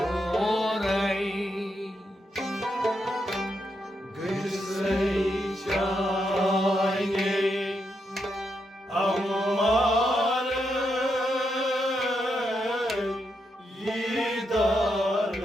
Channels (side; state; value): both; normal; correlation 0.82